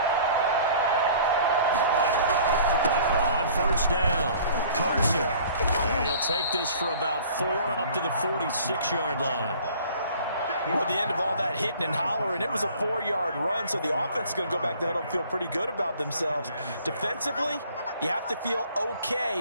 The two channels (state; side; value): inverted; both; correlation -0.51